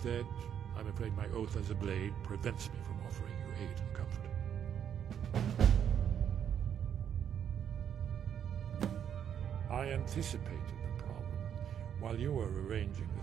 I'm afraid my oath as a Blade prevents me from offering you aid and comfort. I anticipated the problem. While you were arranging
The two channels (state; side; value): quieter; left; 8.8 dB